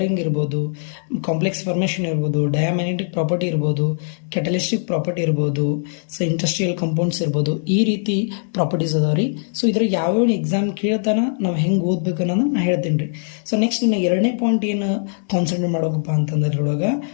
ಇರ್ಬೋದು, ಕಾಂಪ್ಲೆಕ್ಸ್ ಫಾರ್ಮೇಷನ್ ಇರ್ಬೋದು, ಡಯಾಮ್ಯಾಗ್ನೆಟಿಕ್ ಪ್ರಾಪರ್ಟಿ ಇರ್ಬೋದು, ಕ್ಯಾಟಲಿಸ್ಟಿಕ್ ಪ್ರಾಪರ್ಟಿ ಇರ್ಬೋದು, ಸೊ ಇಂಡಸ್ಟ್ರಿಯಲ್ ಕಂಪೌಂಡ್ಸ್ ಇರ್ಬೋದು, ಈ ರೀತಿ ಪ್ರಾಪರ್ಟೀಸ್ ಅದಾವ ರೀ. ಸೊ ಇದ್ರಾಗ ಯಾವ್ಯಾವ ಎಕ್ಸಾಮ್ ಕೇಳ್ತಾನ ನಾವು ಹೆಂಗೆ ಓದ್ಬೇಕು ಅನ್ನೋದನ್ನ ನಾನು ಹೇಳ್ತೀನಿ ರೀ. ಸೊ ನೆಕ್ಸ್ಟ್ ಇನ್ನು ಎರಡನೇ ಪಾಯಿಂಟ್ ಏನು ಕಾನ್ಸಂಟ್ರೇಟ್ ಮಾಡೋಕಪ್ಪ ಅಂತಂದ್ರೆ ಇದ್ರೊಳಗೆ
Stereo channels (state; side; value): silent; right; 65 dB below the other